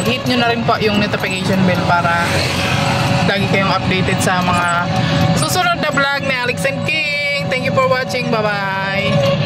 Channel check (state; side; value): identical; both; correlation 1.00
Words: hit nyo na rin po yung notification bell para lagi kayong updated sa mga susunod na vlog ni Alex and King. Thank you for watching. Bye-bye.